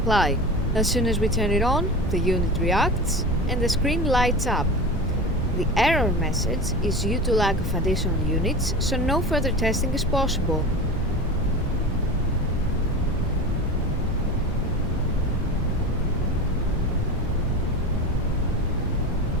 As soon as we turn it on, the unit reacts and the screen lights up. The error message is due to lack of additional units, so no further testing is possible.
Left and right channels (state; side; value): normal; both; correlation 0.30